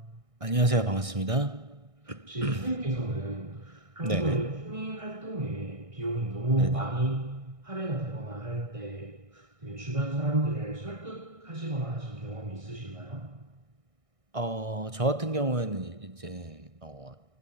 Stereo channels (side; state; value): left; late; 1.6 ms